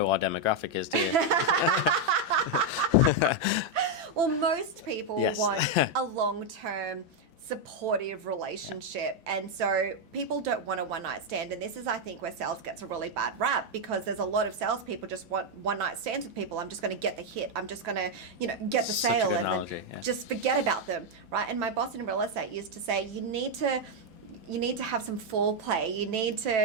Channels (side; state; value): left; late; 5.9 ms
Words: our demographic is, do you? Well, most people Yes. want a long-term supportive relationship, and so people don't want a one-night stand. And this is, I think, where sales gets a really bad rap, because there's a lot of salespeople just want one-night stands with people. I'm just going to get the hit, I'm just going to get the Such a sale, good and analogy, then just forget about them, right? And my boss in real estate used to say, you need to have some foreplay. You need